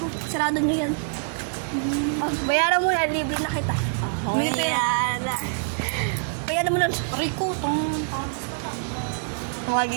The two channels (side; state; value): left; silent; digital silence